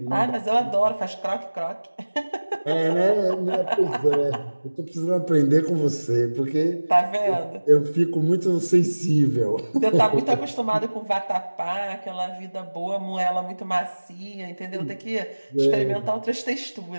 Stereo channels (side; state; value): both; inverted; correlation -1.00